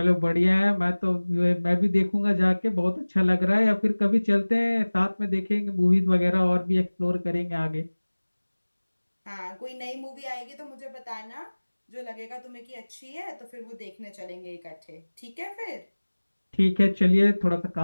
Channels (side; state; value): both; inverted; correlation -1.00